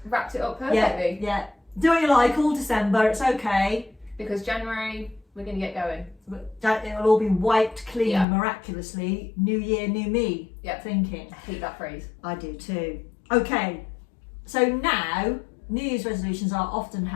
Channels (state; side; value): drops out; right; at 8.2 s